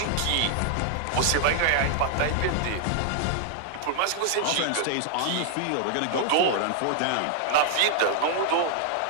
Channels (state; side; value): different; both; correlation 0.00